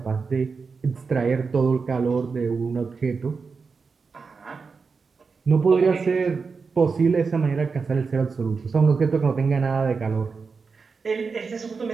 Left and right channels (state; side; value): quieter; left; 4.9 dB